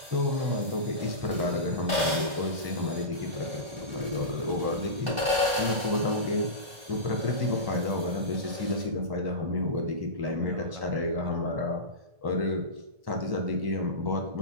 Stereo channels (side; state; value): left; late; 1.2 ms